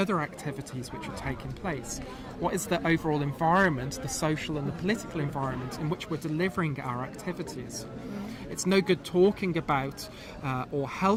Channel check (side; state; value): both; identical; correlation 1.00